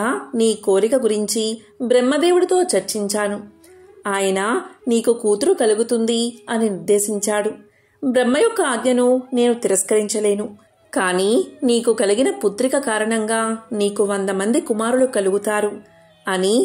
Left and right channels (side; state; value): both; identical; correlation 1.00